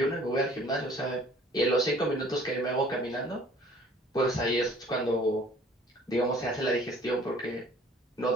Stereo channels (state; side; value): normal; both; correlation 0.53